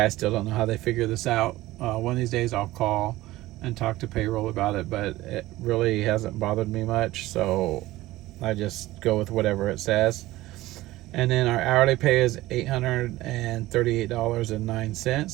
still don't know how they figure this out. One of these days I'll call and talk to payroll about it, but it really hasn't bothered me much, so I just go with whatever it says. And then our hourly pay is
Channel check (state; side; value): quieter; left; 17.2 dB